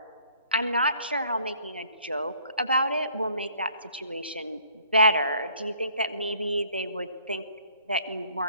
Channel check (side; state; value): both; inverted; correlation -0.60